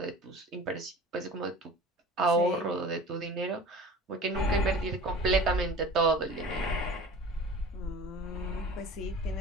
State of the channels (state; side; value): normal; both; correlation 0.40